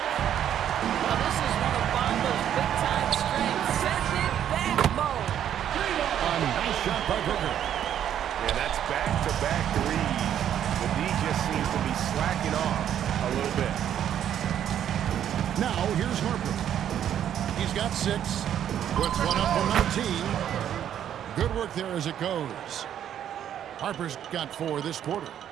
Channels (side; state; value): left; quieter; 10.1 dB